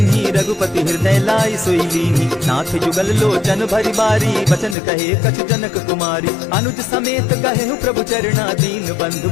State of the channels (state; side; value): drops out; right; at 4.8 s